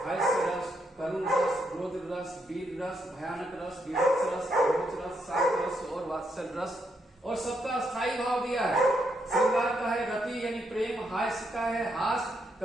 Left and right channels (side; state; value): both; normal; correlation 0.78